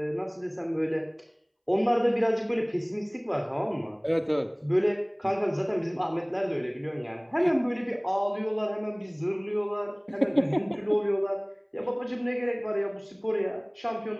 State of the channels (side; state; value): both; identical; correlation 1.00